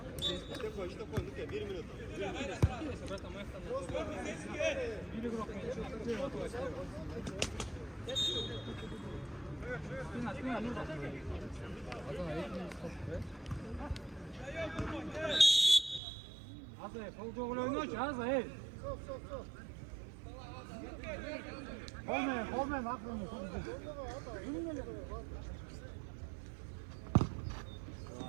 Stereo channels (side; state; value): left; drops out; at 16.0 s